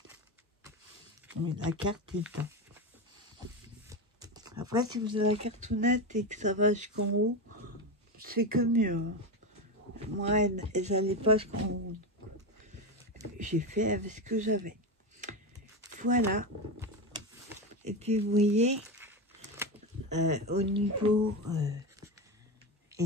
Mais la carte est dedans. Après, si vous avez la cartonnette et que ça va jusqu'en haut, c'est que mieux. Hein. Moi, elles n'allaient pas jusqu'en haut. J'ai fait avec ce que j'avais. Voilà. Et puis, vous voyez, au niveau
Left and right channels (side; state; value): both; normal; correlation 0.16